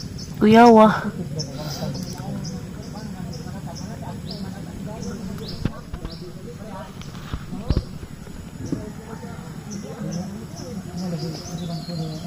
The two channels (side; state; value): both; identical; correlation 1.00